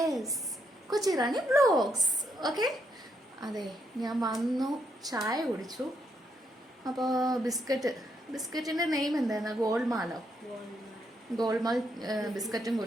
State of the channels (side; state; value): both; normal; correlation 0.77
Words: കൊച്ചി റാണി വ്ലോഗ്സ്. ഓക്കെ, അതെ, ഞാൻ വന്നു, ചായ കുടിച്ചു. അപ്പോൾ ബിസ്ക്കറ്റിൻ്റെ നെയിം എന്തായിരുന്നു? ഗോൾമാലോ? ഗോൾമാൽ ബിസ്ക്കറ്റും